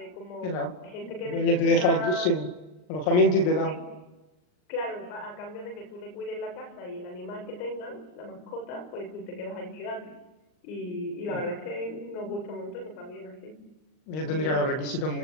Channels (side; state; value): right; late; 39 ms